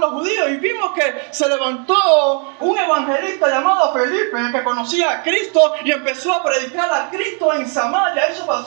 los judíos, y vimos que se levantó un evangelista llamado Felipe que conocía a Cristo y empezó a predicar a Cristo en Samaria. Eso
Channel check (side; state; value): left; quieter; 39.4 dB